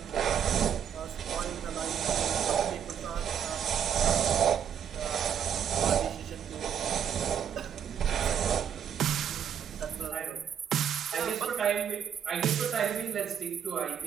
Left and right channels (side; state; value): left; quieter; 8.5 dB